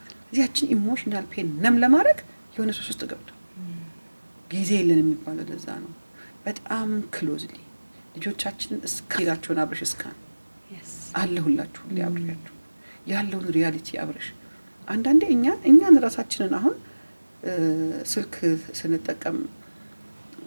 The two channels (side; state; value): both; inverted; correlation -1.00